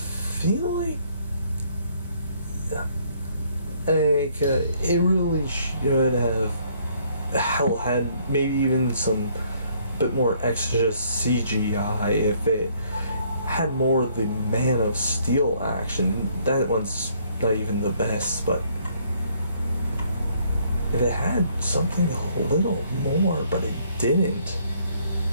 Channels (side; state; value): both; inverted; correlation -0.65